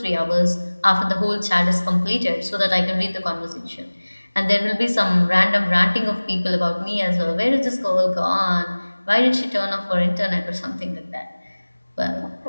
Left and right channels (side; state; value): both; inverted; correlation -1.00